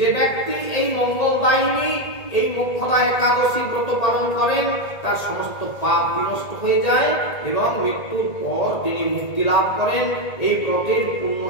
ব্যক্তি এই মঙ্গলদায়িনী এই মোক্ষদা একাদশী ব্রত পালন করেন তার সমস্ত পাপ বিনষ্ট হয়ে যায়, এবং মৃত্যুর পর তিনি মুক্তি লাভ করেন। এই ব্রতের পূর্ণ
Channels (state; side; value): late; right; 1.8 ms